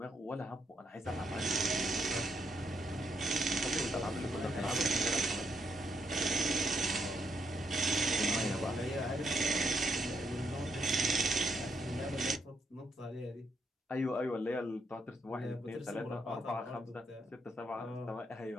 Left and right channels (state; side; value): normal; both; correlation 0.76